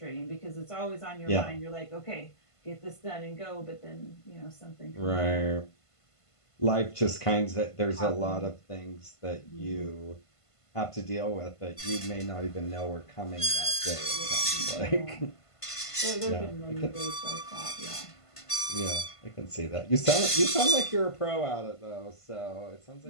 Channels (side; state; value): right; late; 1.5 ms